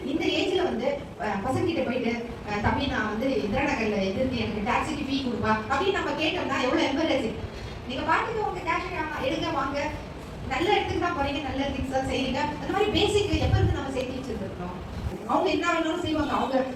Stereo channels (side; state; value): both; identical; correlation 1.00